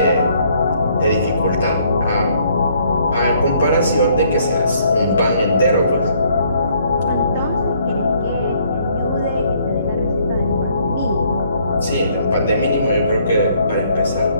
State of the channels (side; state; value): both; inverted; correlation -0.65